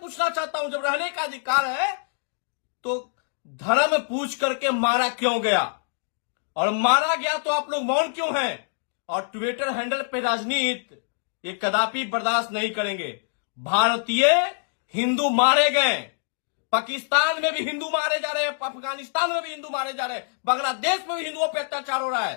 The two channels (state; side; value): silent; right; digital silence